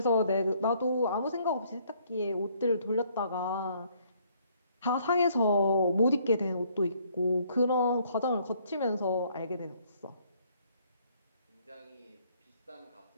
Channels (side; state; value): both; inverted; correlation -0.65